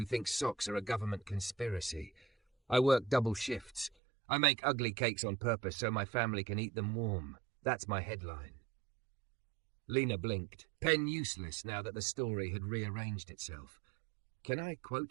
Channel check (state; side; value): drops out; left; at 3.9 s